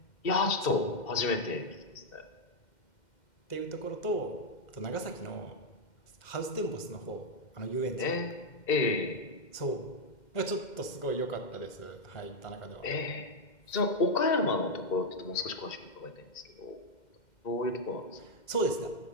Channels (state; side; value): late; right; 2.1 ms